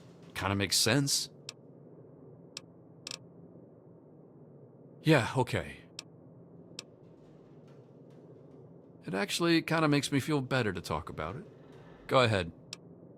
Kinda makes sense. Yeah, okay. It actually kinda makes me feel better to talk about it. Go ahead.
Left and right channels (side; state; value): both; identical; correlation 1.00